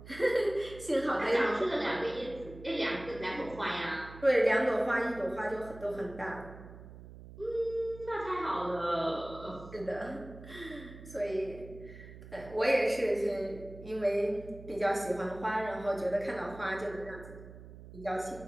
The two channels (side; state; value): right; noise; hum, 16 dB below the sound